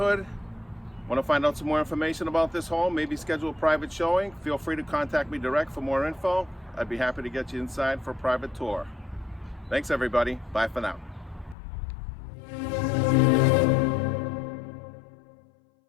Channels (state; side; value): drops out; right; at 11.6 s